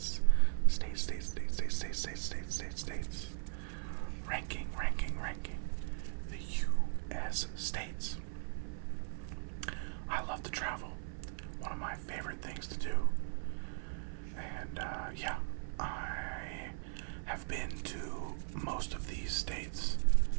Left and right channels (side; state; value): left; silent; 52 dB below the other